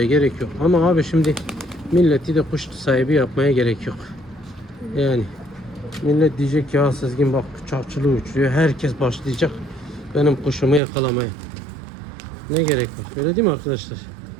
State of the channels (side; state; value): left; drops out; at 10.8 s